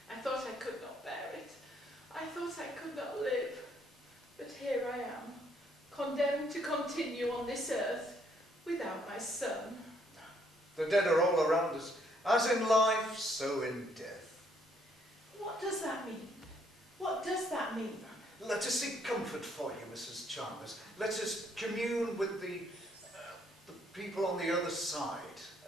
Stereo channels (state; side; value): normal; both; correlation 0.68